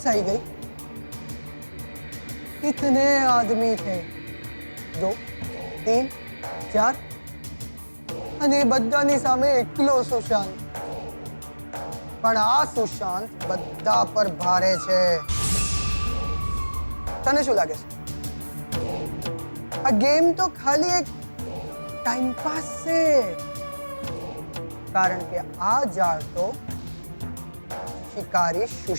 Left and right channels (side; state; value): both; inverted; correlation -1.00